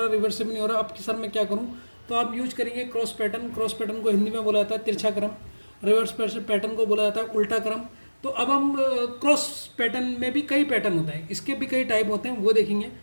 रिवर्स से भी नहीं हो रहा, अब सर मैं क्या करूं, तो आप यूज करेंगे क्रॉस पैटर्न। क्रॉस पैटर्न को हिंदी में बोला जाता है तिरछा क्रम, रिवर्स पैटर्न को बोला जाता है उल्टा क्रम। तो अब हम क्रॉस पैटर्न में भी कई पैटर्न होते हैं, इसके भी कई टाइप होते हैं, वो देखेंगे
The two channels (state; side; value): inverted; both; correlation -1.00